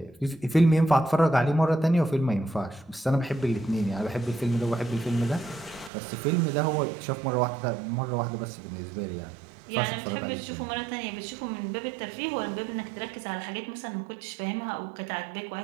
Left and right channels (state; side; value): drops out; left; at 5.9 s